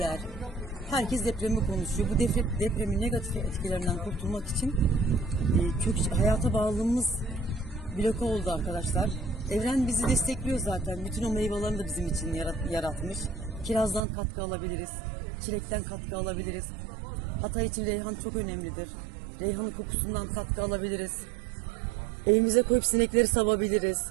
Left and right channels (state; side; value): drops out; left; at 14.0 s